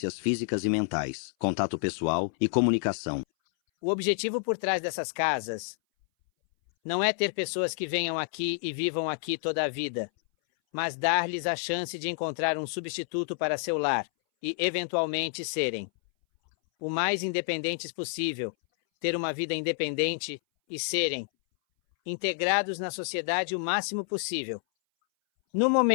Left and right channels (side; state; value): right; silent; 59 dB below the other